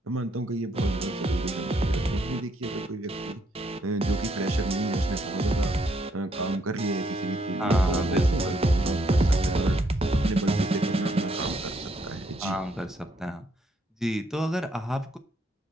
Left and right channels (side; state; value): both; normal; correlation 0.72